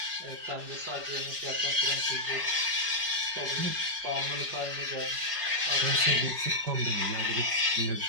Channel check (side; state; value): left; late; 4.9 ms